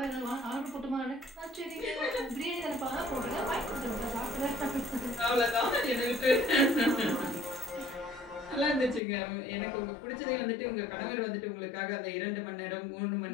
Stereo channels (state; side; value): drops out; right; at 9.0 s